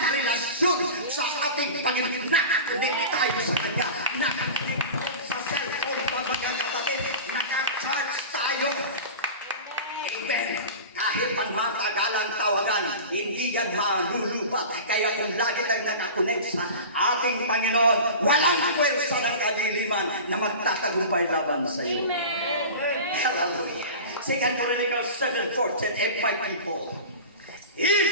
relasyon sa ating Panginoon. Nakakunik tayo sa Kanya. Nakakunik sa cellphone pa mga kapatid. Naka-charge tayo. Amen. Kahit pang matagalang tawagan, hindi yan malulubat. Kaya kung lagi lang nakakunik sa ating Panginoon, walang pwersa ng kadiliman na magtatagumpay laban sa iyo. Amen. Hallelujah. 2 Chronicles 7:14, if my people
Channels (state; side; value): inverted; both; correlation -0.33